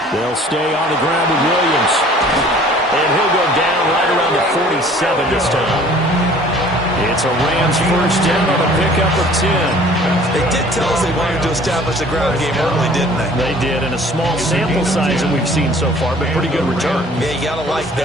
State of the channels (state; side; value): normal; both; correlation 0.51